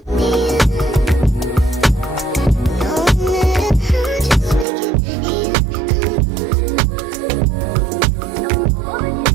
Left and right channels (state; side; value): drops out; left; at 4.7 s